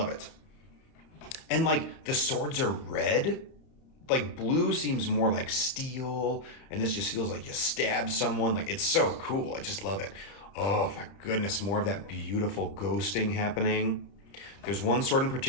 it. And like the swords are red. Like blue seems more like steel, and this just feels like you stab someone. Like it's so cool. I just love it. Oh my goodness, more of that beautiful ghosting happening. There's one sword in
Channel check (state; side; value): late; right; 31 ms